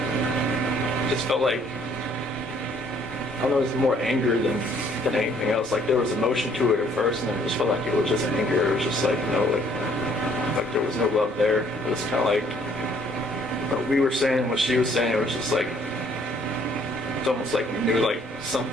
it just felt like, I don't know, it was more anger than anything else. Like there was emotion to it at first, and then it just felt like it was just anger. It was just like, like there was no love there. It was kind of like what we were saying, what she was saying. It was just like, it's almost like we knew like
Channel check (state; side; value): normal; both; correlation 0.62